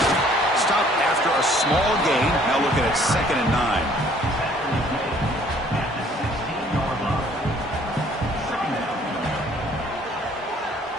Stop after a small gain. Now looking at second and 9.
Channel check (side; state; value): both; normal; correlation 0.58